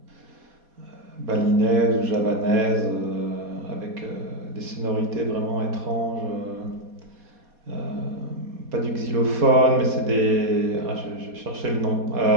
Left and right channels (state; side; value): late; left; 4.2 ms